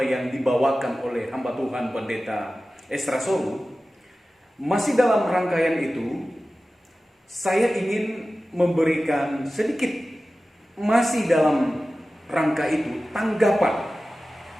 yang dibawakan oleh hamba Tuhan Pendeta Esra Soru, masih dalam rangkaian itu saya ingin memberikan sedikit masih dalam rangka itu tanggapan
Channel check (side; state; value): both; normal; correlation 0.95